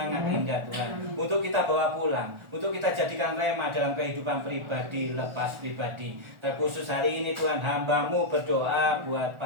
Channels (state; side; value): late; left; 1.4 ms